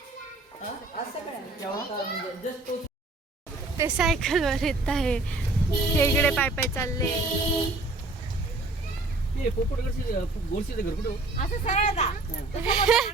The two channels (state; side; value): quieter; left; 3.1 dB